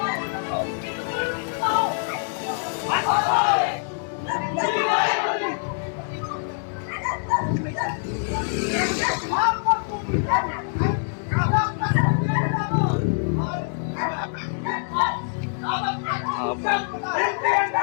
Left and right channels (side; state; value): right; silent; digital silence